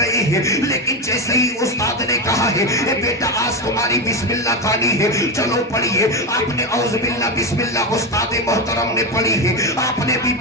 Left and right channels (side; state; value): both; normal; correlation 0.14